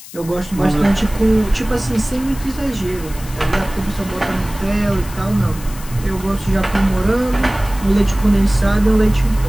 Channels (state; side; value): noise; left; hiss, 16 dB below the sound